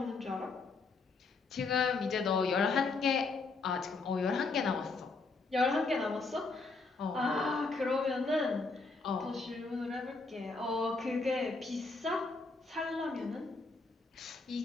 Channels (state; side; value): quieter; right; 4.0 dB